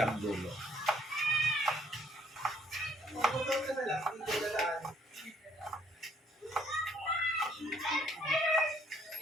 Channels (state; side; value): normal; both; correlation 0.65